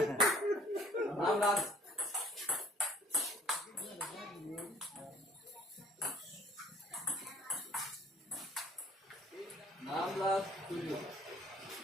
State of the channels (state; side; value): normal; both; correlation 0.56